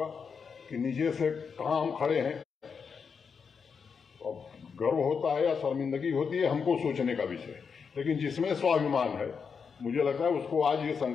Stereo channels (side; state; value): right; quieter; 6.0 dB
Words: कि नीचे से कहां हम खड़े हैं। अब गर्व होता है या शर्मिंदगी होती है, हमको सोचने का विषय, लेकिन जिसमें स्वाभिमान है, मुझे लगता है उसको आज ये